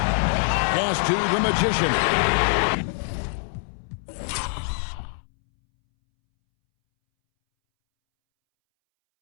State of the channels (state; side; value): silent; right; 63 dB below the other